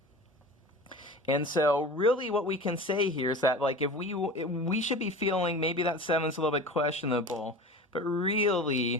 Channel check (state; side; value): normal; both; correlation 0.35